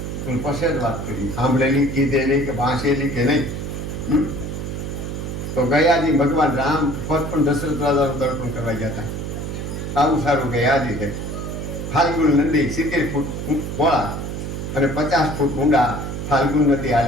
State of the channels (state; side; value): noise; right; hum, 5 dB below the sound